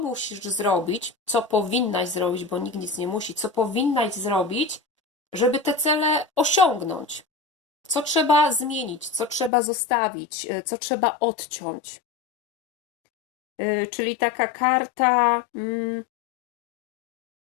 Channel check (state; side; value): drops out; right; at 9.5 s